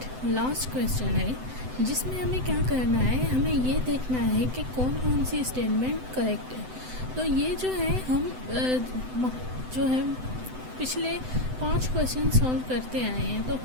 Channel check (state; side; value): late; left; 7.9 ms